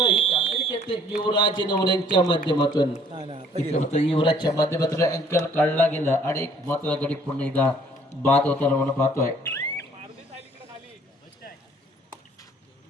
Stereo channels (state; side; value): normal; both; correlation 0.58